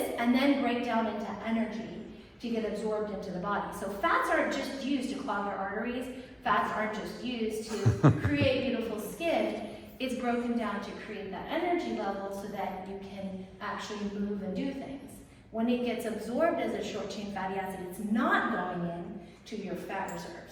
and then break down into energy to get absorbed into the body. So fats aren't just used to clog our arteries. Fats aren't just used to create beautiful skin. It's broken down to create that energy level so that you can actually move and do things. When it gets absorbed as a short chain fatty acid, it's not going in to your fat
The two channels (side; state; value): both; identical; correlation 1.00